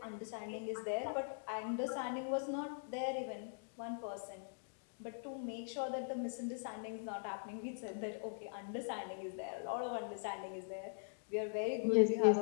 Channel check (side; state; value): right; silent; digital silence